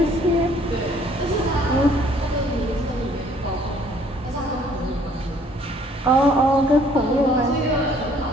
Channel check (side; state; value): both; normal; correlation 0.59